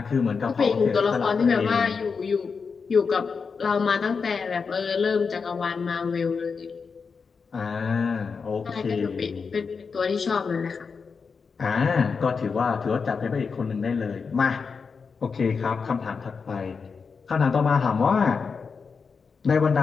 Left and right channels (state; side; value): quieter; right; 5.3 dB